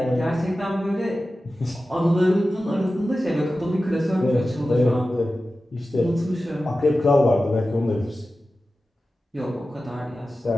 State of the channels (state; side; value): normal; both; correlation 0.94